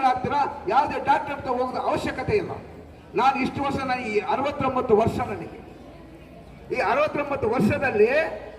ಯಾವುದೇ ಡಾಕ್ಟರ್ ಹತ್ರ ಹೋಗೋದು ಅವಶ್ಯಕತೆ ಇಲ್ಲ. ನಾನು ಇಷ್ಟು ವರ್ಷ, ನಾನು ಈ 69 ವರ್ಷ, ನನಗೆ ಈ 69 ವರ್ಷದಲ್ಲಿ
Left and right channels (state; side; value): identical; both; correlation 1.00